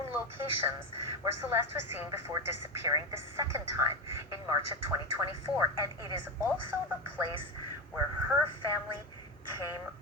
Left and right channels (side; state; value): both; normal; correlation 0.15